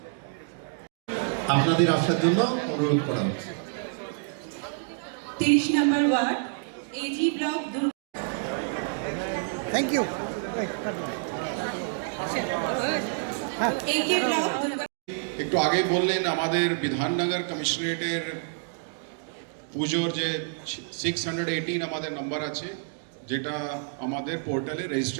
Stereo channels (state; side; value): silent; left; digital silence